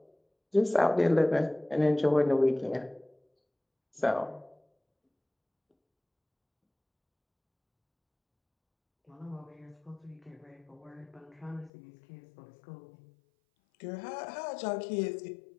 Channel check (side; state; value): right; drops out; at 11.7 s